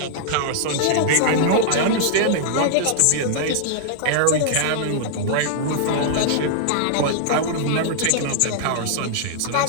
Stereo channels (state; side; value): different; both; correlation -0.01